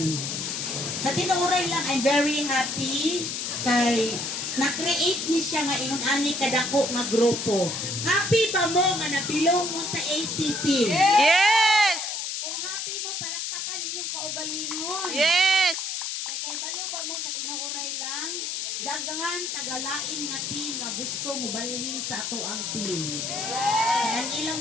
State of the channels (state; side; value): noise; left; hiss, 3 dB below the sound